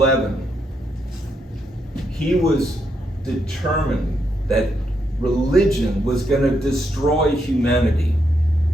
he was determined that religion was going to destroy humanity.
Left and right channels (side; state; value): both; normal; correlation 0.79